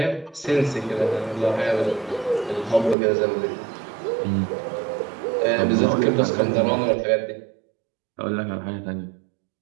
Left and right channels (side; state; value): left; drops out; at 3.0 s